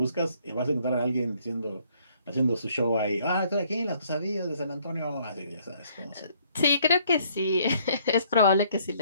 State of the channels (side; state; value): both; inverted; correlation -0.64